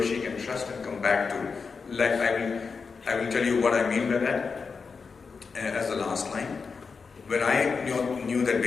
she can trust and come back to, like I will tell you what I mean by that as the last line. When I knew that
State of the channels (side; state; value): right; quieter; 5.1 dB